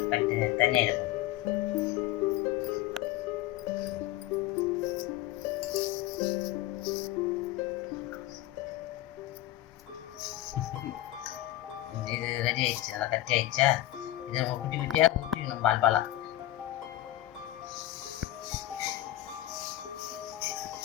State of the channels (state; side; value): quieter; right; 15.1 dB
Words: கட்டி தண்ணி எடுக்கணும். இது ரெடி ஆயிடுச்சு, நல்லா கட்டி ஆயிடுச்சா? இதை நம்ம குட்டி குட்டியாக குட்டிக்கணும் பால் பாலாக.